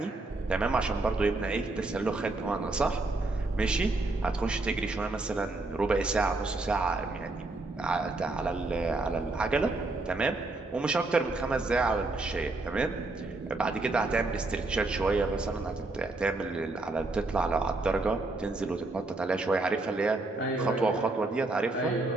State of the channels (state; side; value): quieter; left; 3.1 dB